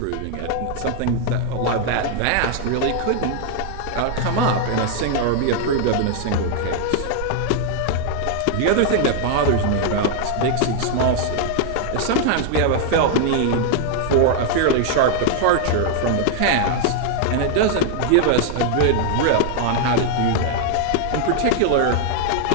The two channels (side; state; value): both; different; correlation 0.00